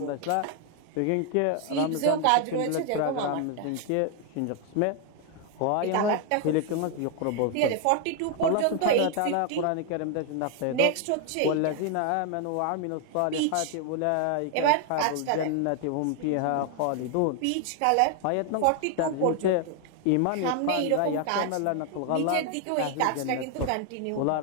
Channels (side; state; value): both; different; correlation 0.00